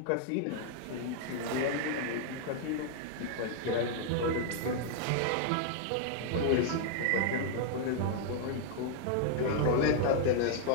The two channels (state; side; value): different; both; correlation 0.00